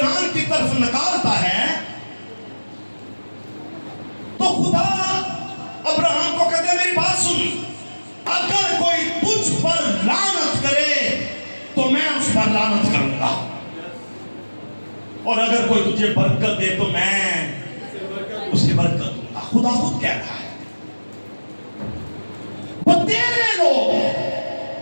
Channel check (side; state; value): both; inverted; correlation -1.00